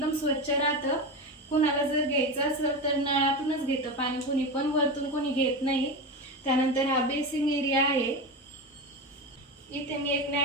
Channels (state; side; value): normal; both; correlation 0.20